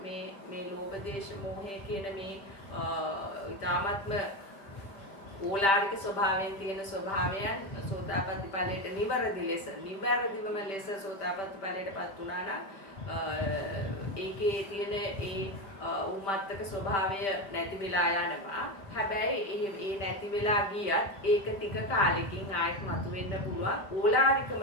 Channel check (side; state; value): right; late; 5.1 ms